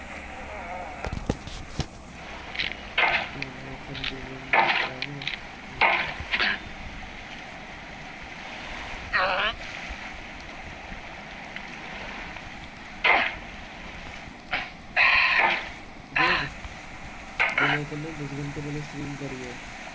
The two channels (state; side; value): identical; both; correlation 1.00